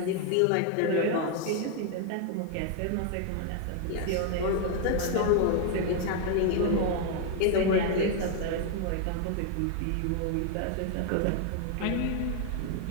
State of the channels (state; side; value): different; both; correlation 0.00